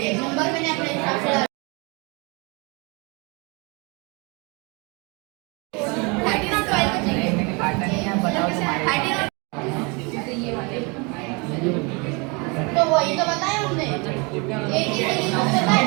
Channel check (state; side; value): quieter; left; 29.9 dB